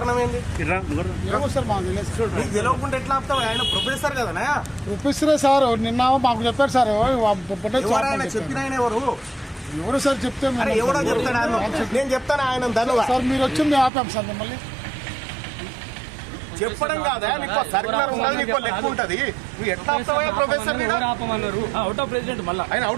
ఏంది? ఏమో సార్ మాకు తెలియదు. నీకు తెలియకుండా ఎట్లా ఆపుతావు? ఆయన ప్రొఫెసర్ కదనా? ప్రొఫెసరే సార్ నిన్న మాకు చెప్పారు సార్. ఎవరైనా చెప్పిన ఆయన ఎవరు? ఎవరు సార్ చెప్తే మేము- అరే ఎవడో చెప్తాడు ఆయన. నేను చెప్తాను ఆయన ధన్యవాదాలు. సార్ మీరు వచ్చి మేము ఆపాం సార్ మిమ్మల్ని. చెప్పడం కాదా? నీకు సర్కులర్ ఉండదు, నీకు లెక్క ఉంటది. నువ్వు ఎట్లా ఆపుతావా ప్రొఫెసర్? ఆపమన్నారు. అవుట్ ఆఫ్ ప్రెసిడెంట్ మళ్ళా ఆయన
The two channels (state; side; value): drops out; left; at 13.9 s